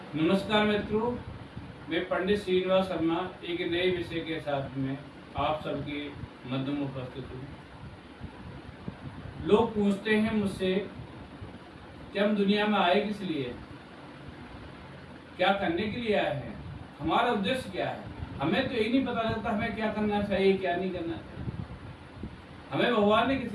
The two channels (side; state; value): both; identical; correlation 1.00